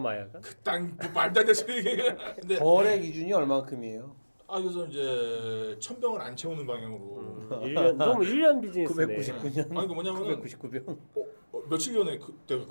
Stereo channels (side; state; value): both; inverted; correlation -1.00